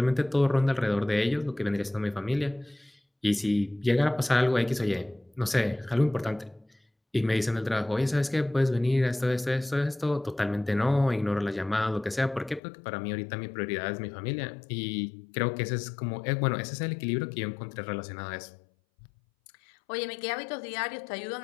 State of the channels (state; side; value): drops out; right; at 12.6 s